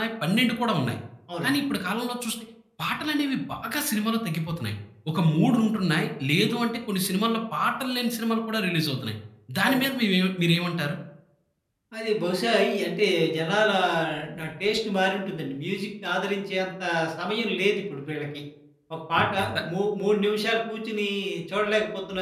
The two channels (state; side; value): identical; both; correlation 1.00